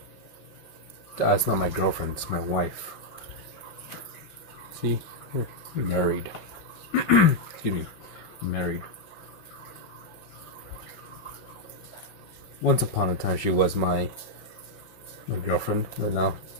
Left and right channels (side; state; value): right; late; 5.4 ms